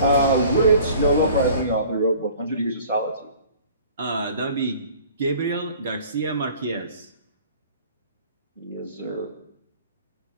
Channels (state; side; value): inverted; both; correlation -0.49